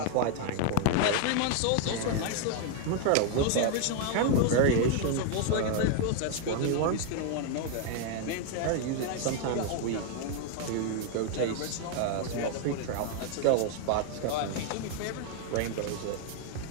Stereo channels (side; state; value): both; different; correlation 0.00